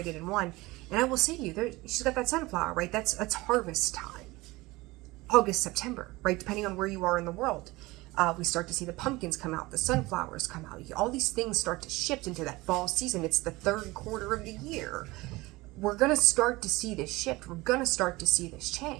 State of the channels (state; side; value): quieter; left; 21.0 dB